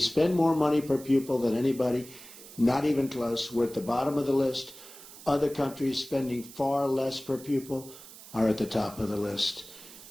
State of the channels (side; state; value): right; noise; hiss, 17 dB below the sound